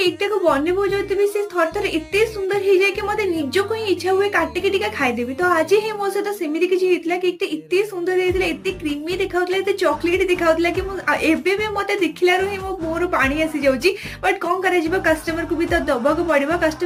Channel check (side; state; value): both; identical; correlation 1.00